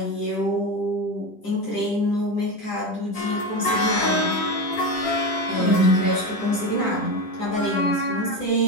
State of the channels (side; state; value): right; late; 10 ms